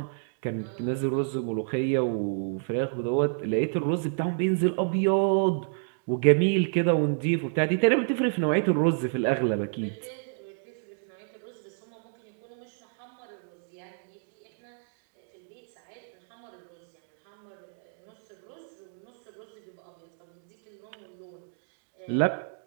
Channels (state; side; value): silent; left; digital silence